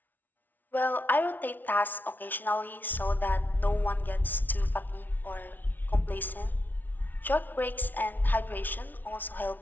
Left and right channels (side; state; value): right; late; 0.084 ms